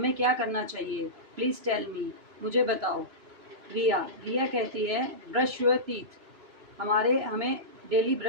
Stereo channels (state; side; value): late; left; 3.0 ms